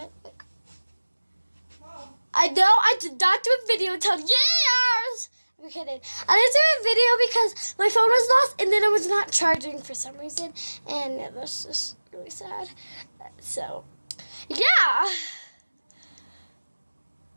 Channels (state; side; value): inverted; both; correlation -1.00